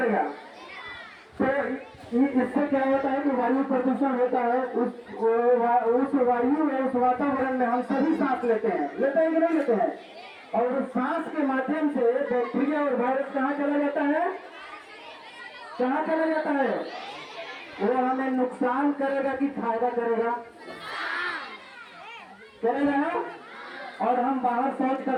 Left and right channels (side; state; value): both; identical; correlation 1.00